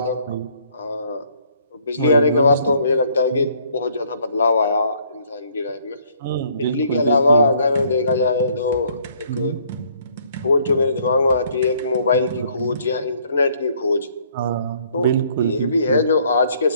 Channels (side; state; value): both; inverted; correlation -0.63